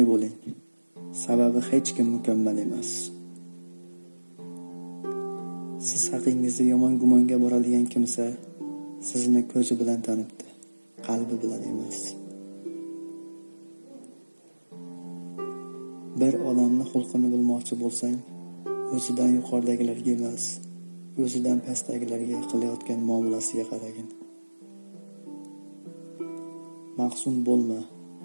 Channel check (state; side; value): inverted; both; correlation -1.00